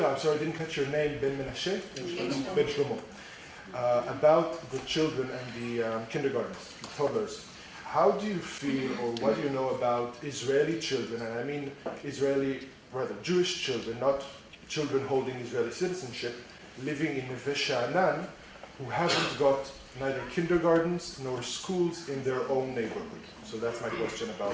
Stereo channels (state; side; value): identical; both; correlation 1.00